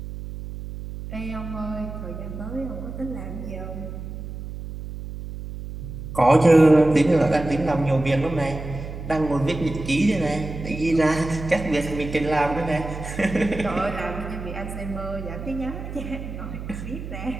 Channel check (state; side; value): noise; right; hum, 9 dB below the sound